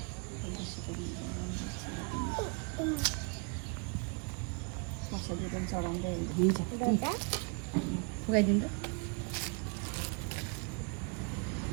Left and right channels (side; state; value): left; quieter; 35.5 dB